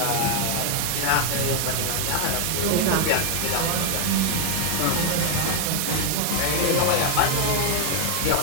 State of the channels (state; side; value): different; both; correlation 0.00